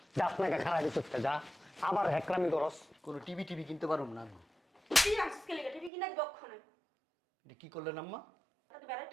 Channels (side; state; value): left; drops out; at 5.9 s